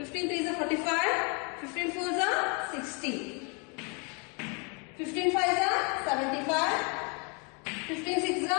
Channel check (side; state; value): right; quieter; 34.0 dB